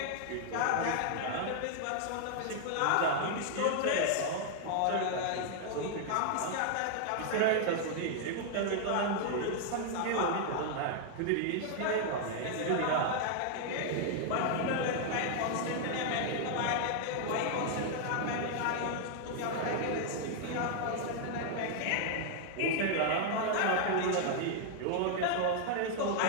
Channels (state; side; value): different; both; correlation 0.00